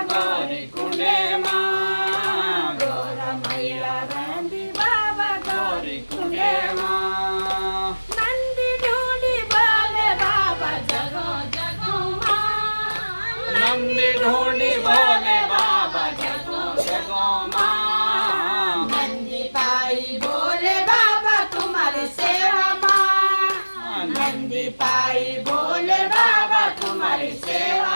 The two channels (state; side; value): inverted; both; correlation -1.00